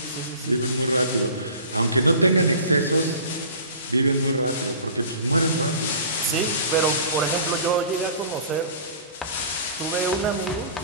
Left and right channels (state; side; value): inverted; both; correlation -0.42